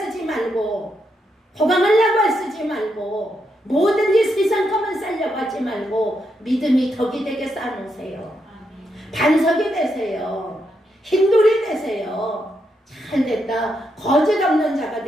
말고, 호강하려고 애쓰지 말고, 뭐든지 세상 것만 쌓려고 하지 말고 믿음이 덕이 되게 쌓아놓으세요. 반석이 되세요. 흰돌이 되세요. 잘 됐다. 거짓 없는 자가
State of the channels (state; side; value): normal; both; correlation 0.81